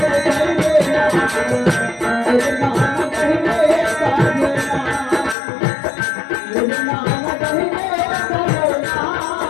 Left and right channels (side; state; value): right; drops out; at 5.4 s